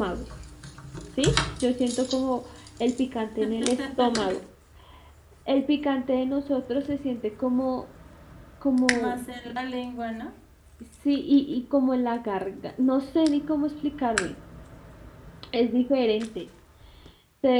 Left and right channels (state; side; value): identical; both; correlation 1.00